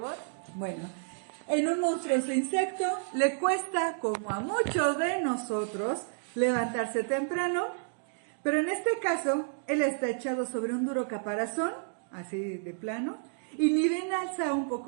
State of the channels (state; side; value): silent; left; digital silence